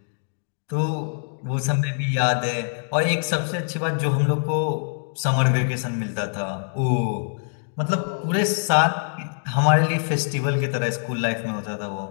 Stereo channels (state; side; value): silent; right; digital silence